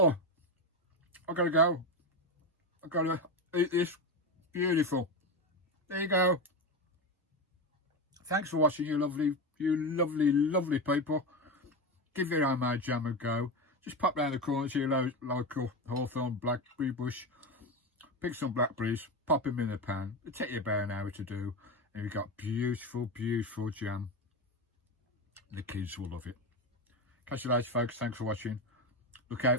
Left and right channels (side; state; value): both; normal; correlation 0.17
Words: I gotta go. I've got to eat this. Beautiful. There you go. Thanks for watching, you lovely people. Give your homemade jam a go. Just pop round the corner to your local hawthorn blackberry bush. Pick some blackberries, pop them in the pan. It'll take you about an hour to do. And you've got beautiful jam. The kids will love it. Catch you later, folks. Thanks for watching. Look